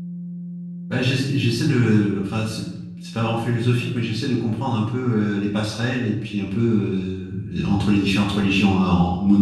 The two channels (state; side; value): identical; both; correlation 1.00